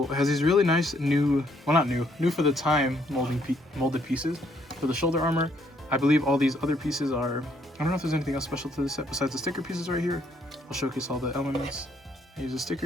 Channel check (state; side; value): normal; both; correlation 0.69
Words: It has these really nice new, well not new for the time molded pieces for the shoulder armor. I believe all these other pieces are, I don't know if there's anything else special to this set besides the sticker pieces right here. I'll showcase all the elements. I use a sticker.